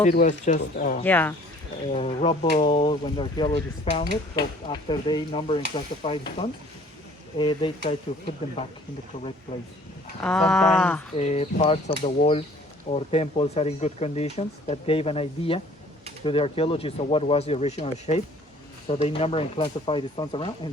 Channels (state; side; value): normal; both; correlation 0.54